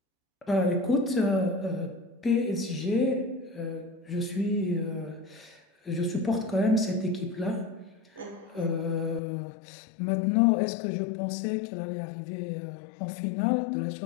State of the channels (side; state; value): right; drops out; at 9.2 s